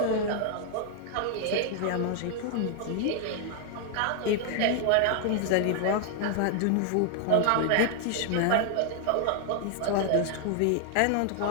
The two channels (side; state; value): both; different; correlation 0.00